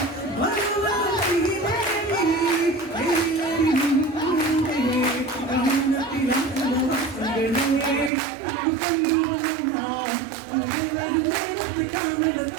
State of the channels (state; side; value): drops out; left; at 8.1 s